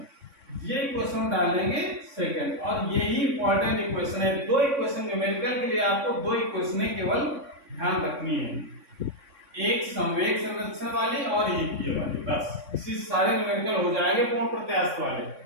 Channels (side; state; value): left; late; 3.6 ms